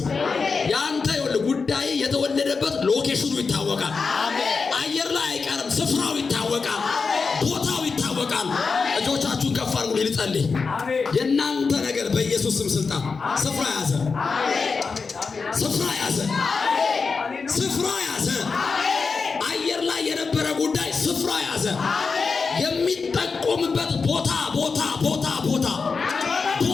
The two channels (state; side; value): quieter; right; 4.8 dB